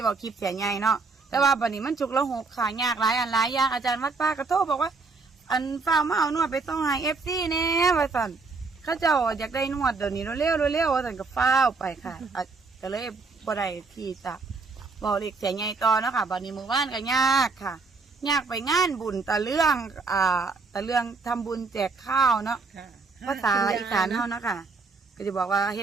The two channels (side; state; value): left; quieter; 4.1 dB